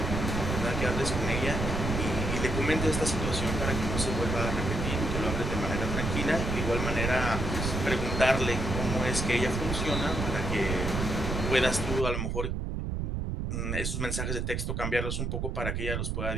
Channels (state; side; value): noise; right; rumble, 2 dB below the sound